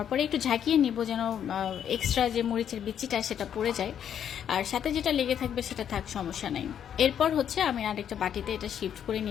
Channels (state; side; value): quieter; right; 9.1 dB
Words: পরে একটু ঝাঁকিয়ে নিব যেন এক্সট্রা যে মরিচের বিচিটা সেটা পড়ে যায়, আর সাথে যেটা লেগে থাকবে সেটা থাক, সমস্যা নাই। এরপর হচ্ছে আমি আরেকটা বাটিতে এটা শিফট করে